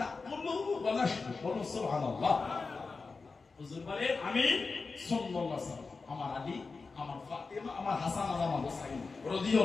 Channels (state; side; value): quieter; right; 4.3 dB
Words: ওয়া নাশরবু। সুবহানাল্লাহ। হুজুর বলেন আমি সাল্লাল্লাহু আলাইহি ওয়াসাল্লাম, আমার আলী, আমার ফাতিমা, আমার হাসান আর আমার হুসাইন